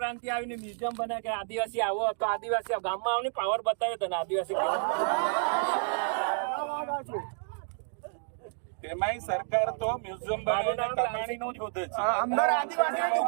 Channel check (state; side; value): silent; left; 58 dB below the other